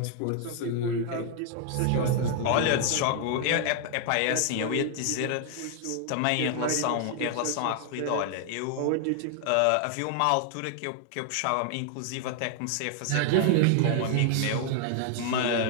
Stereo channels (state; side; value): different; both; correlation 0.00